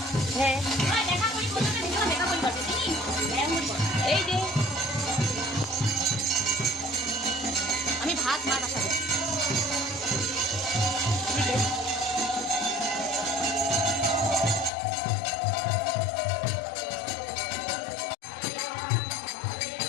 হ্যাঁ এই যে আমি ভাত মা বসাবো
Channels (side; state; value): right; drops out; at 14.7 s